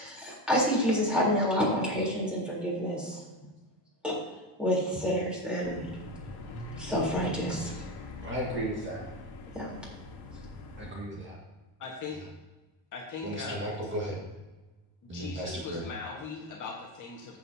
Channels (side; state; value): both; normal; correlation 0.18